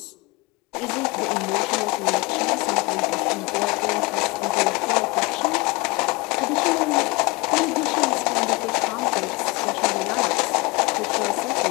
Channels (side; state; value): right; quieter; 25.9 dB